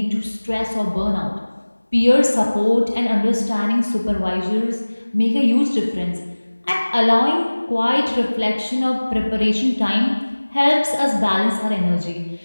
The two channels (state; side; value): inverted; both; correlation -1.00